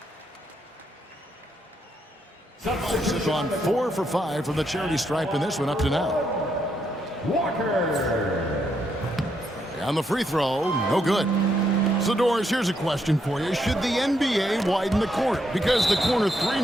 Bucks have gone 4 for 5 from the charity stripe in this one up to now. Walker. On the free throw, no good. So, Doris, here's a question for you. Should the NBA widen the court? Because the corner three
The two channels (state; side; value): normal; both; correlation 0.77